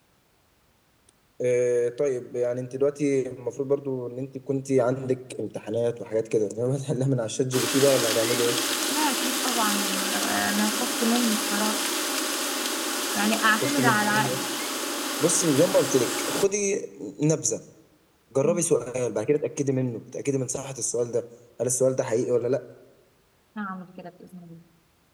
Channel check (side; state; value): both; identical; correlation 1.00